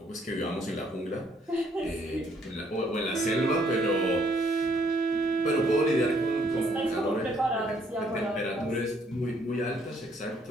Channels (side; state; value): both; normal; correlation 0.66